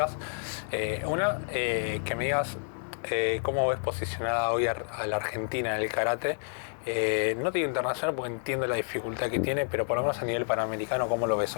Una, que me digas cómo ves posicionada hoy a la Argentina en el karate. No te digo internacional porque entiendo la dificultad que tiene, pero por lo menos a nivel panamericano, ¿cómo lo ves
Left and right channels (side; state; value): right; silent; digital silence